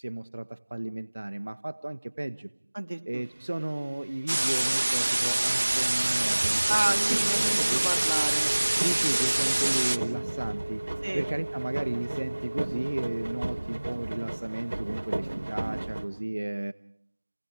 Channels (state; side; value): inverted; both; correlation -1.00